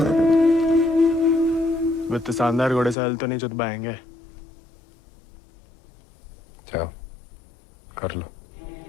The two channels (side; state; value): right; drops out; at 3.0 s